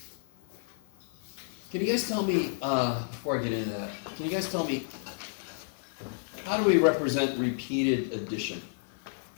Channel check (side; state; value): right; silent; 57 dB below the other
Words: Can you guys tell me, before I get into that, can you guys tell me, how do we represent repeated addition?